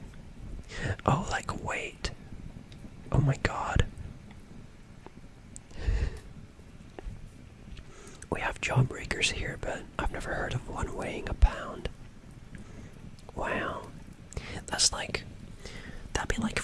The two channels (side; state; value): both; identical; correlation 1.00